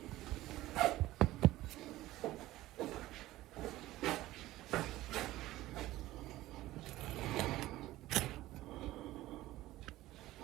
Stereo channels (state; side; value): quieter; left; 16.4 dB